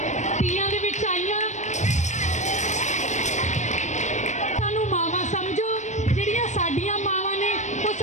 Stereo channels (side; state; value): right; late; 0.34 ms